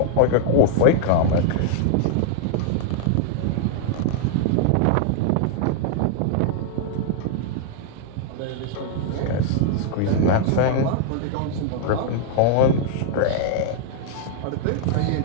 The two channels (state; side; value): different; both; correlation -0.01